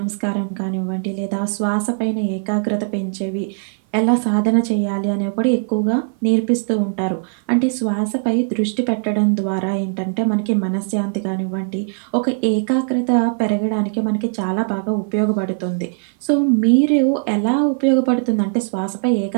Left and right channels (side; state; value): left; silent; 57 dB below the other